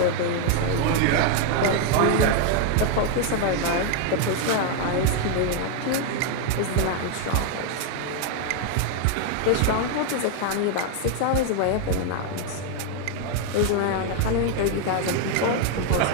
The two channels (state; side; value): different; both; correlation 0.00